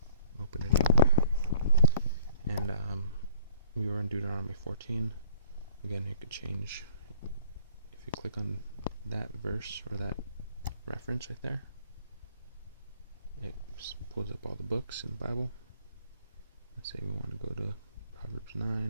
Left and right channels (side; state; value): both; inverted; correlation -0.57